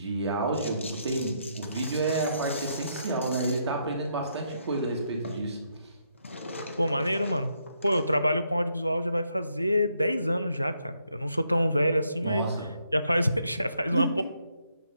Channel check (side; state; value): both; inverted; correlation -0.76